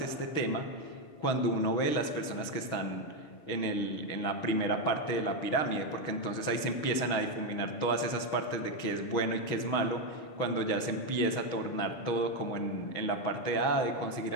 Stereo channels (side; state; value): right; late; 6.3 ms